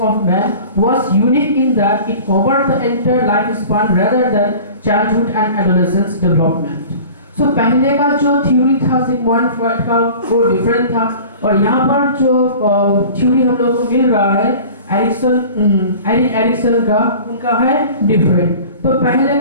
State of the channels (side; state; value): both; inverted; correlation -0.42